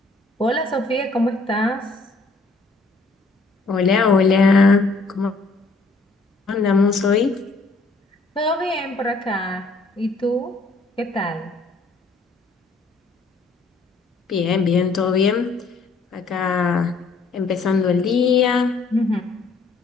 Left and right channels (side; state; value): right; quieter; 3.7 dB